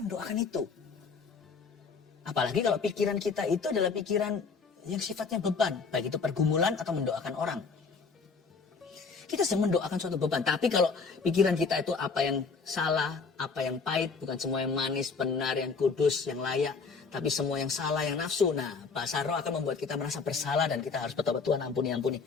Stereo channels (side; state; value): right; quieter; 4.9 dB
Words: doakan itu. Apalagi kalau pikiran kita itu adalah pikiran yang sifatnya beban, baik itu pergumulan atau mendoakan orang. Kita sedang mendoakan suatu beban, tapi kalau pikiran kita itu apa yang salah, apa yang pahit, bukan semua yang manis, benar, yang kudus, yang layak, tapi semua yang salah, yang nafsu. Nah, bahasa roh akan membuat kita merasa bersalah dan kita harus bertobat, Tuhan ampuni.